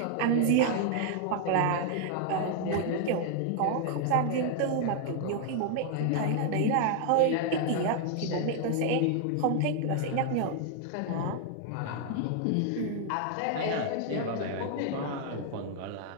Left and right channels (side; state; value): both; different; correlation 0.00